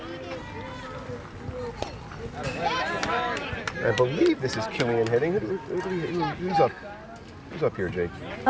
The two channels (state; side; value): identical; both; correlation 1.00